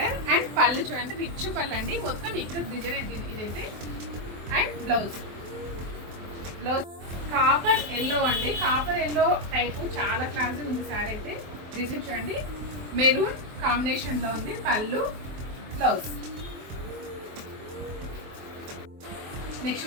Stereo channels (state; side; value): late; left; 23 ms